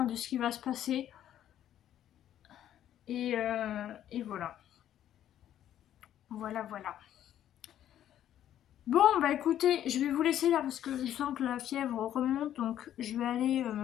de ce qui va se passer. Et voilà. Voilà, voilà. Bon, bah écoutez, je vais vous laisser là parce que je sens que la fièvre remonte. Donc je vais aller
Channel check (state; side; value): quieter; right; 11.2 dB